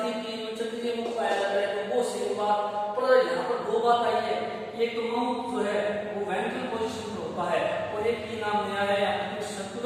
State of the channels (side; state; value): both; identical; correlation 1.00